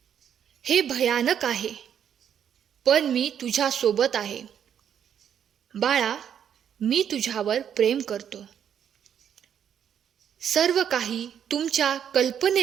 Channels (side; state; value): left; quieter; 8.8 dB